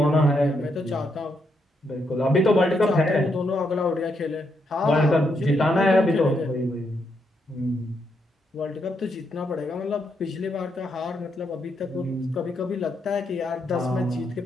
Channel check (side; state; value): both; normal; correlation 0.79